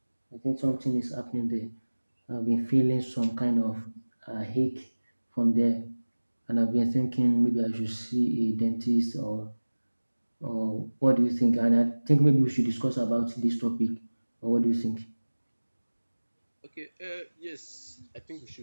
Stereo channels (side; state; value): both; inverted; correlation -1.00